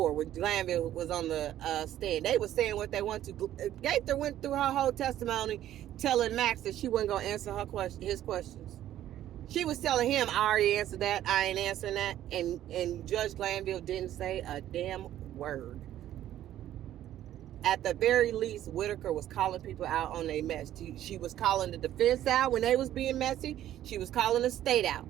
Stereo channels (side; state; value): left; quieter; 12.4 dB